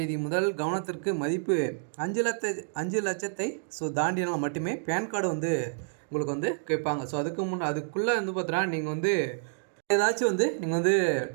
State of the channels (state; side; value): silent; left; digital silence